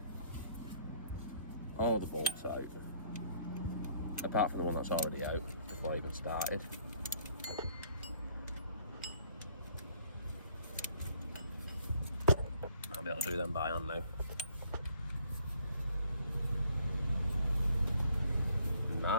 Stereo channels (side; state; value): both; inverted; correlation -0.62